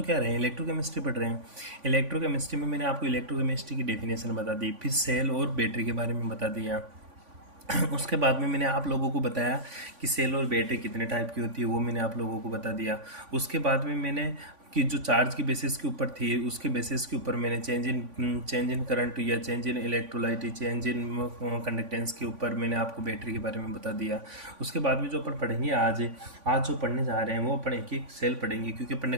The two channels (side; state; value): left; late; 3.5 ms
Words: क्या रहे हैं, इलेक्ट्रोकेमिस्ट्री पढ़ रहे हैं। इलेक्ट्रोकेमिस्ट्री में मैंने आपको इलेक्ट्रोकेमिस्ट्री की डेफिनेशन बता दी, फिर सेल और बैटरी के बारे में बता दिया। उसके बाद में मैंने आप लोगों को बताया कि सेल और बैटरी कितने टाइप की होती है, वो मैंने आप लोगों को बता दिया। उसके बाद में मैंने कि जो चार्ज की बेसिस के ऊपर थी, उसके बेसिस के ऊपर मैंने चेंज इन करंट या change in electrolyte, change in conductance के ऊपर मैंने आपको बैटरी के बारे में बता दिया। उसके बाद में जो अपन पढ़ेंगे आज जो पढ़ने जा रहे हैं वो अपन एक एक सेल पढ़ेंगे, क्योंकि अपन ने